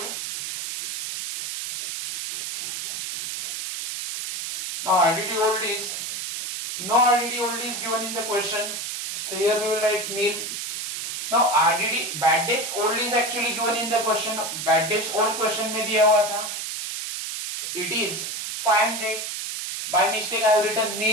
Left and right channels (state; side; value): noise; right; hiss, 5 dB below the sound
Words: Now RDD old is no RDD old is given in the question. So here we will write nil. Now RDD bad debts old is actually given in the question. Bad debts old question में दिया हुआ था. It is 500. By mistake I have written